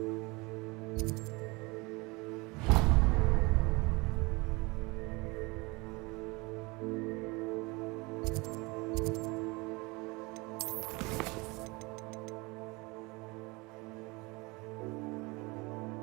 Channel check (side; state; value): left; quieter; 25.5 dB